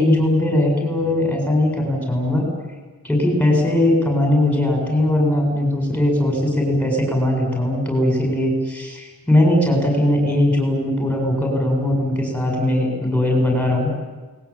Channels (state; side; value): normal; both; correlation 0.75